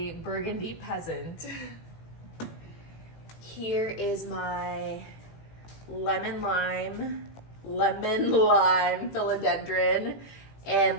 burgundy peasant. Here is my lemon lime philodendron.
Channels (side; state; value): right; late; 18 ms